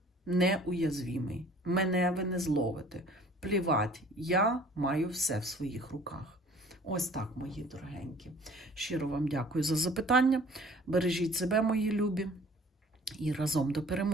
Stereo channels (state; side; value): normal; both; correlation 0.51